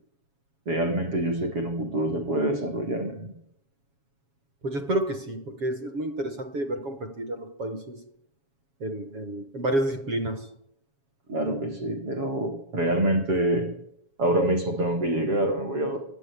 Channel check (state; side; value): late; left; 7.2 ms